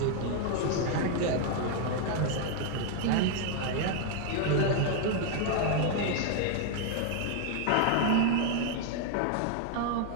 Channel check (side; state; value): both; different; correlation 0.00